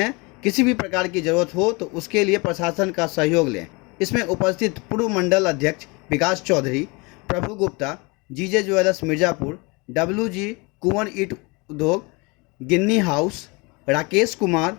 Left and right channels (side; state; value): right; quieter; 27.7 dB